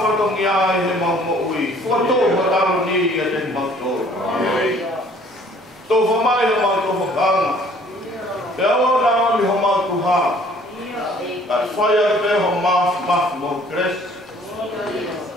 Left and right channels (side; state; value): both; normal; correlation 0.56